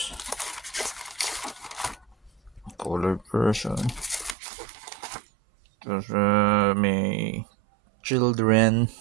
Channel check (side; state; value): left; drops out; at 4.4 s